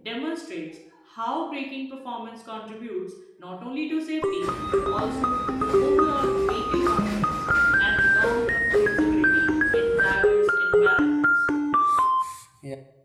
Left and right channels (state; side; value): identical; both; correlation 1.00